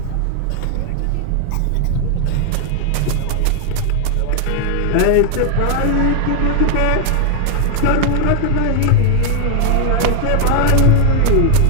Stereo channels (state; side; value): different; both; correlation 0.00